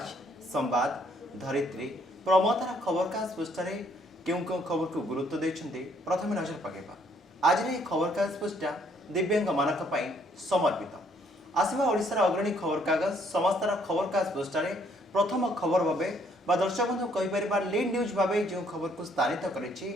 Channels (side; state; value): both; normal; correlation 0.66